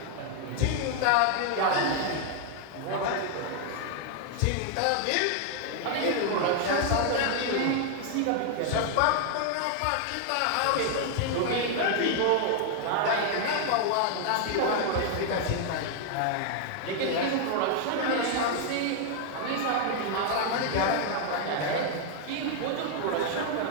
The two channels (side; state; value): both; different; correlation 0.00